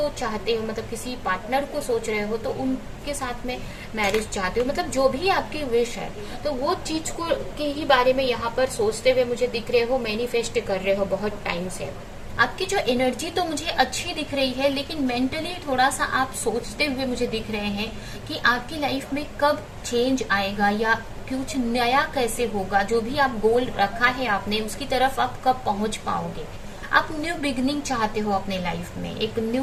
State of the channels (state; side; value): identical; both; correlation 1.00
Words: चाहते हो, मतलब किसी पार्टनर को सोच रहे हो, तो उनके साथ में मैरिज चाहते हो, मतलब जो भी आपकी विश है, तो वो चीज को के ही बारे में यहाँ पर सोचते हुए मुझे दिख रहे हो, मैनिफेस्ट कर रहे हो बहुत टाइम से। आपकी जो एनर्जी तो मुझे अच्छी दिख रही है, लेकिन मेंटली थोड़ा सा आप सोचते हुए मुझे दिख रहे हैं कि आपकी लाइफ में कब चेंज आएगा या कुछ नया कैसे होगा। जो भी आप गोल रखा है आपने, उसकी तरफ आप कब पहुंच पाओगे। आप न्यू बिगनिंग चाहते हो अपने लाइफ में, एक